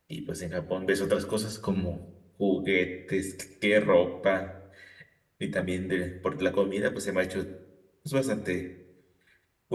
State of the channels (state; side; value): identical; both; correlation 1.00